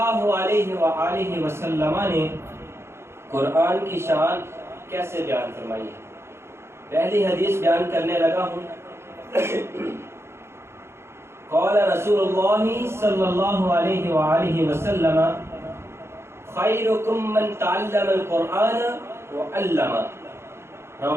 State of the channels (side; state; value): left; late; 0.12 ms